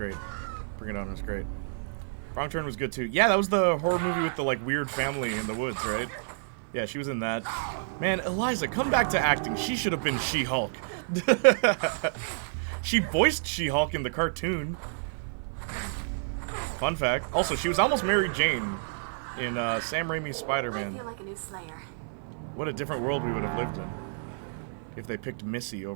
Bring It On was great. Wrong Turn was good too. Yeah, that was the horror movie with the like weird family in the woods, right? Yeah, she was in that. Man, Eliza, come back to acting. She should have been She-Hulk. She voiced She-Hulk in the cartoon. Fun fact. Also, she was almost Mary Jane in Sam Raimi's Spider-Man. I feel like a new Slayer. What a different world we would have lived in if they picked Missy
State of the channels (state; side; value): silent; left; 58 dB below the other